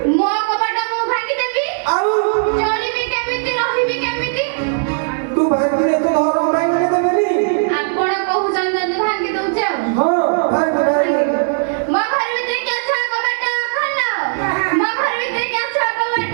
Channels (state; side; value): silent; left; digital silence